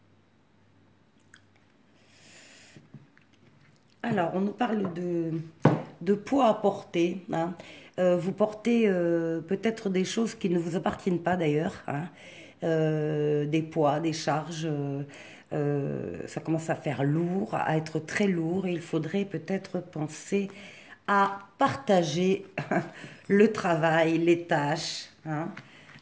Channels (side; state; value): both; identical; correlation 1.00